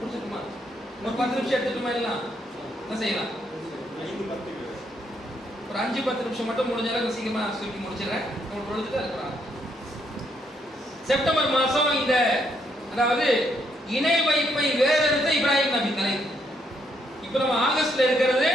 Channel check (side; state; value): both; normal; correlation 0.74